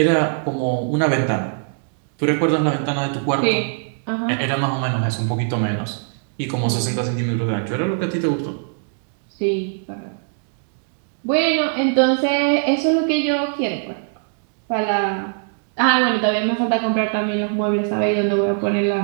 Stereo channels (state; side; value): silent; left; digital silence